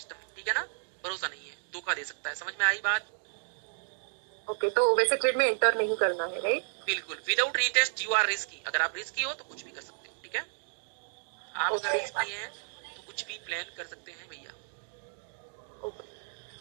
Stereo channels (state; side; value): silent; left; digital silence